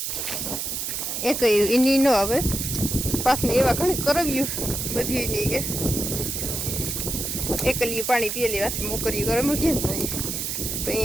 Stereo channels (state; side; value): noise; right; hiss, 3 dB below the sound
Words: એક એની નો આવે પાછને એવા ઘણી કરવ્યું બધી એની કે એકલી પાણી પીએ લેવાથી મોકરી કરે મૂકીએ ને તો